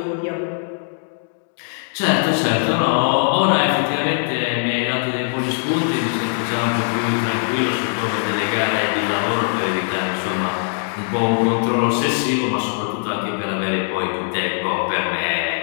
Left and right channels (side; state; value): right; silent; digital silence